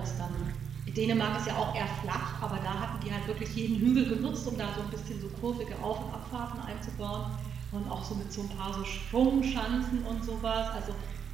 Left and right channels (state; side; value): quieter; left; 7.6 dB